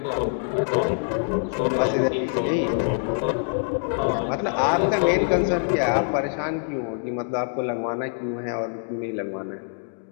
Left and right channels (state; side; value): silent; right; digital silence